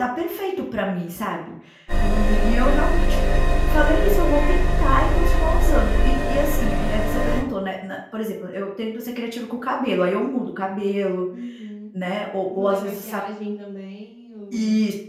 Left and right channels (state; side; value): identical; both; correlation 1.00